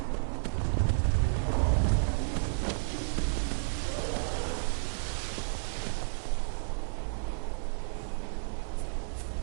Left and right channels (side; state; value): left; silent; digital silence